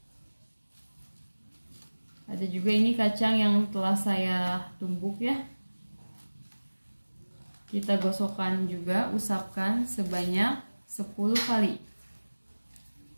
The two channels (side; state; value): both; inverted; correlation -1.00